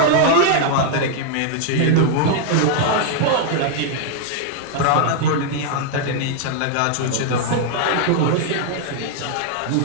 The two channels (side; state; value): both; different; correlation 0.00